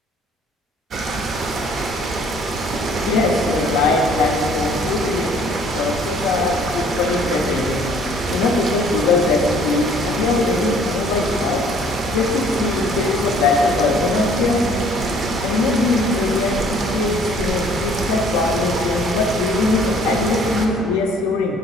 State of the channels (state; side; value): normal; both; correlation 0.57